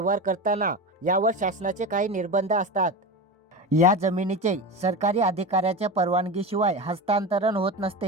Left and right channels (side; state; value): both; normal; correlation 0.24